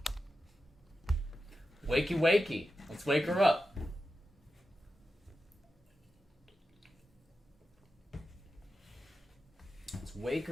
Wakey, wakey. Let's wake her up. Let's wake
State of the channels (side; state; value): both; normal; correlation 0.91